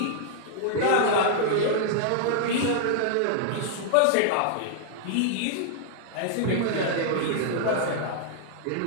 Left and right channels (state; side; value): different; both; correlation -0.01